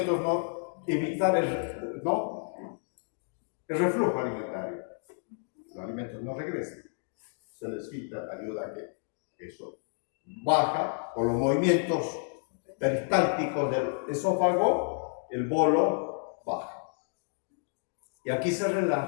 no evitan el reflujo alimentario? Los alimentos no regresan. Se les quita, ayuda a que eso baja por los movimientos peristálticos del esófago, el bolo baja. Y aquí se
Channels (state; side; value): silent; right; 57 dB below the other